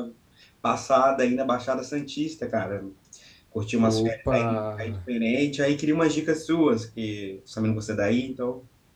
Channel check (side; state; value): both; identical; correlation 1.00